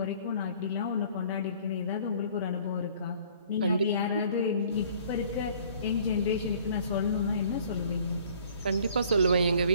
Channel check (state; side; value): inverted; both; correlation -0.55